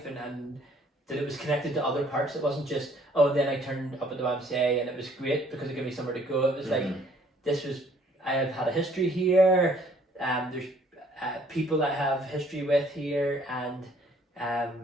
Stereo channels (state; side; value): normal; both; correlation 0.60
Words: and that it was connected to other parts. It wasn't just, oh, then I turned up at the YMCA and it was great because it gave me somewhere to go. It was like, this was, I have had a history here, there's people that I have history with here, and